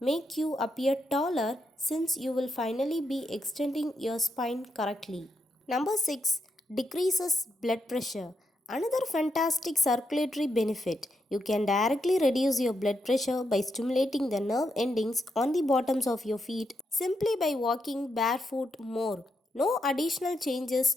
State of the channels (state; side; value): normal; both; correlation 0.82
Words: you appear taller since you will finally be extending your spine correctly. Number 6, decreases blood pressure. Another fantastic circulatory benefit. You can directly reduce your blood pressure by stimulating the nerve endings on the bottoms of your feet simply by walking barefoot more. No additional changes